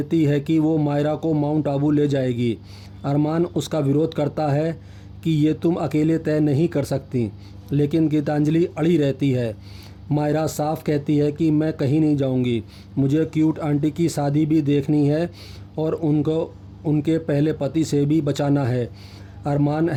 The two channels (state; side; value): identical; both; correlation 1.00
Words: है कि वो मायरा को माउंट आबू ले जाएगी। अरमान उसका विरोध करता है कि ये तुम अकेले तय नहीं कर सकती, लेकिन गीतांजलि अड़ी रहती है। मायरा साफ कहती है कि मैं कहीं नहीं जाऊंगी, मुझे क्यूट आंटी की शादी भी देखनी है और उनको उनके पहले पति से भी बचाना है। अरमान